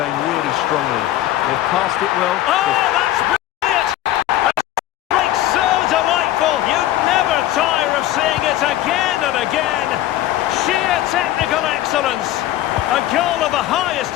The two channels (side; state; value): right; quieter; 14.1 dB